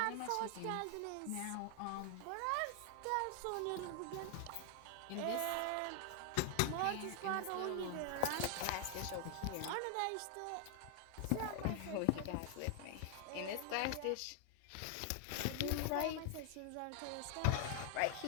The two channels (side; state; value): both; different; correlation 0.00